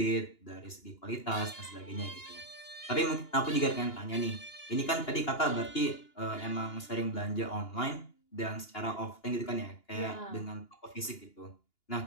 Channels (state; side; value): late; right; 2.9 ms